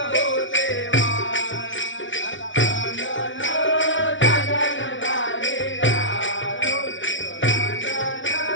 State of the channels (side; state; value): right; late; 0.56 ms